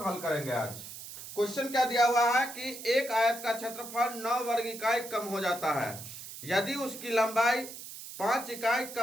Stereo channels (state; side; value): noise; right; hiss, 12 dB below the sound